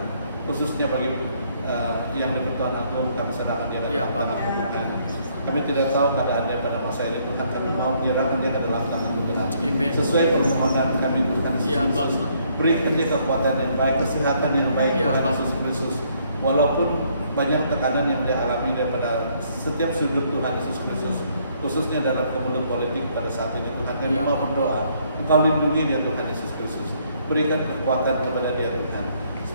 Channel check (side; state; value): both; inverted; correlation -0.68